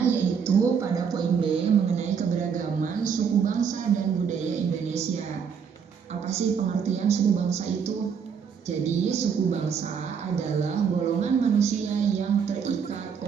yaitu pada poin B mengenai keberagaman suku bangsa dan budaya Indonesia. Apa sih pengertian suku bangsa itu? Jadi suku bangsa adalah golongan manusia yang terikat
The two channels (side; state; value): left; quieter; 6.8 dB